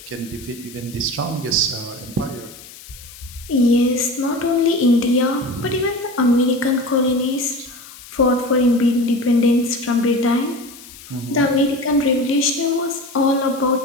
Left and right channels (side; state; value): left; noise; hiss, 18 dB below the sound